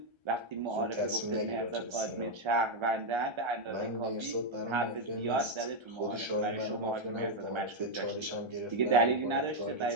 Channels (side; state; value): left; late; 1.3 ms